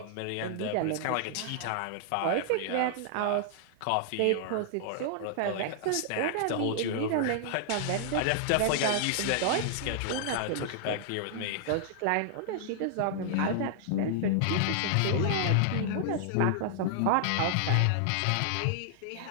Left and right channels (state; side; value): different; both; correlation -0.01